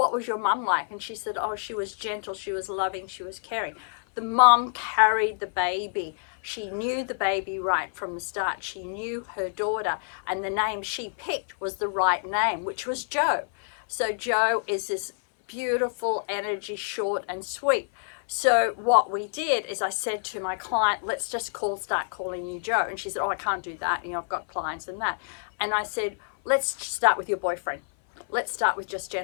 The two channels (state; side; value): silent; right; 58 dB below the other